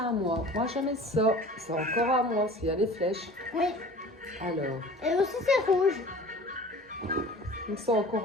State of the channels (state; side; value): normal; both; correlation 0.43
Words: moi. Moi, j'en ai ça. C'est encore à moi, s'il y a les flèches. Oui. Alors. Et aussi, c'est rouge. Donc, c'est